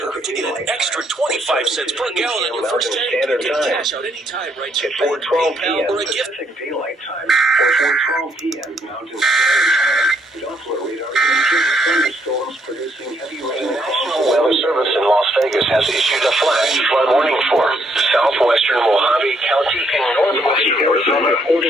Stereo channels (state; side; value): normal; both; correlation 0.72